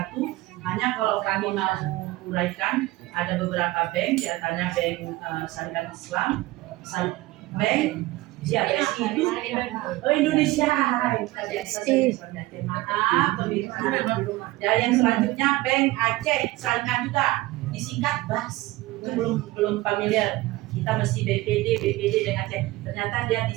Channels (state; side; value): quieter; left; 19.0 dB